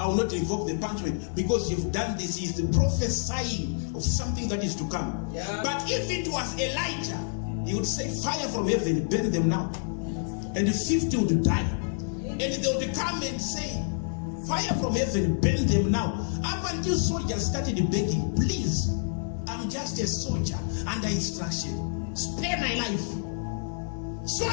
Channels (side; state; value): right; silent; digital silence